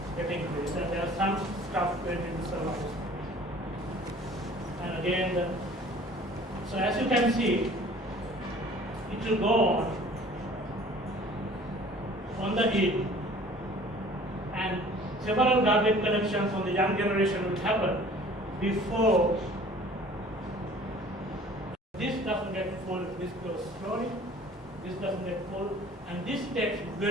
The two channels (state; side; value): normal; both; correlation 0.50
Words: getting increased, and there are some stuff going in the survivor space. And again, so as you can see, it will go on on the heap, and several garbage collections on the young generation will happen before this doesn't get full, this goes slowly, this doesn't get full, and this takes